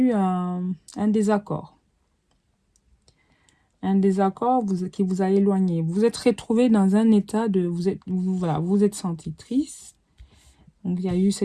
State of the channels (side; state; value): both; identical; correlation 1.00